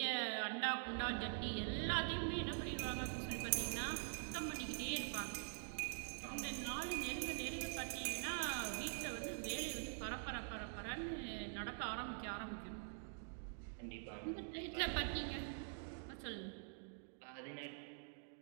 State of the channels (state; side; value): silent; left; digital silence